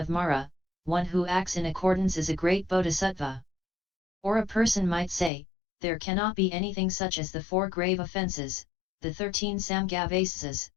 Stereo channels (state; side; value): drops out; right; at 5.3 s